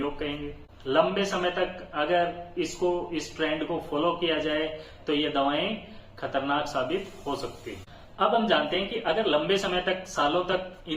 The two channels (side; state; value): both; identical; correlation 1.00